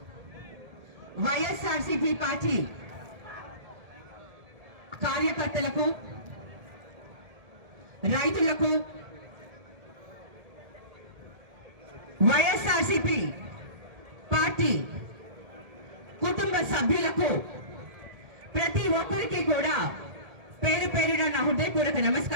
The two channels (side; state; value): left; late; 1.8 ms